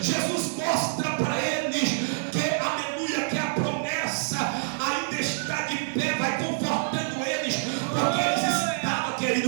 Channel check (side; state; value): left; silent; 60 dB below the other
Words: Jesus mostra para eles que, aleluia, que a promessa ainda está de pé, vai confortando eles, porque eles estavam,